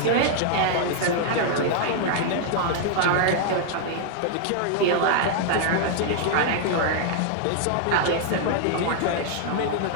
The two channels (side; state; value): both; different; correlation 0.00